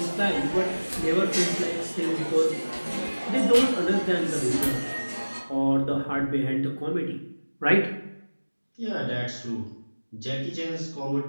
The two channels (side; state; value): both; inverted; correlation -1.00